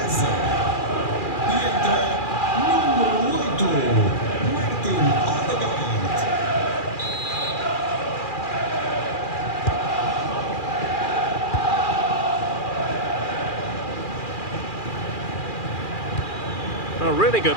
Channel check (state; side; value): late; right; 2.4 ms